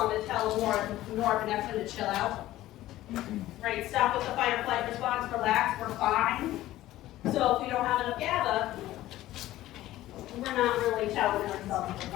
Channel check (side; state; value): right; quieter; 15.3 dB